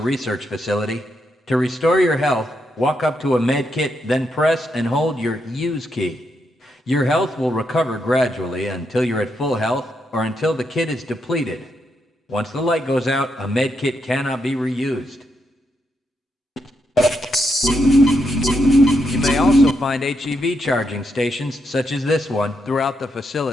Facility. To restore your health, walk up to a med kit, then press and hold your use key. Your health will recover gradually until you're at full health or until the kit is depleted. Once the light goes out, a med kit cannot be reused. You may also find HEV charging stations, such as this one, throughout the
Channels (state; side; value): normal; both; correlation 0.81